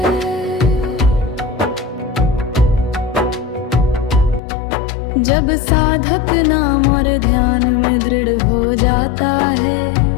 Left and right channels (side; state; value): right; drops out; at 4.4 s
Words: जब साधक नाम और ध्यान में दृढ़ हो जाता है